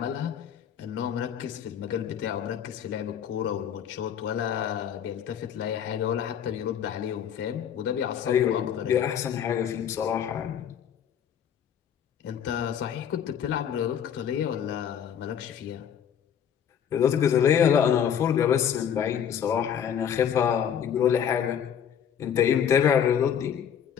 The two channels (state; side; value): quieter; right; 8.7 dB